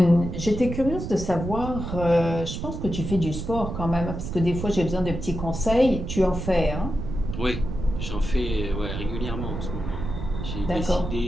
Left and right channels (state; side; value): noise; right; rumble, 6 dB below the sound